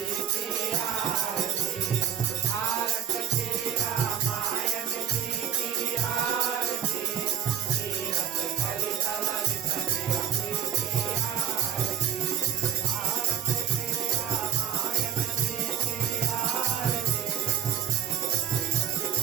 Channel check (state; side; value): quieter; left; 9.7 dB